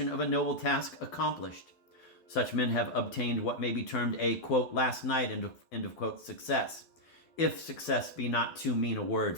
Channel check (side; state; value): right; late; 12 ms